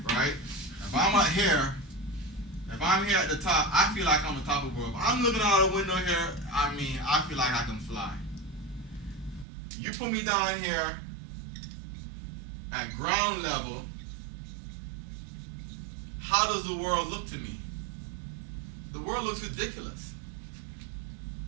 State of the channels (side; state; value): left; drops out; at 9.5 s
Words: right? If I'm out here, if I'm here at the top, I feel like I'm on top of the world. If I'm looking out the window here, I feel like I can fly. You put me down here at ground level, how does the world look to me? The world looks ridiculous.